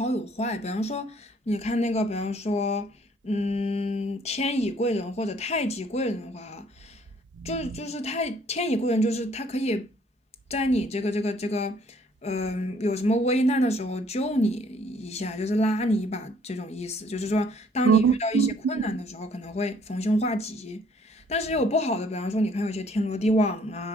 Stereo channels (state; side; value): normal; both; correlation 0.61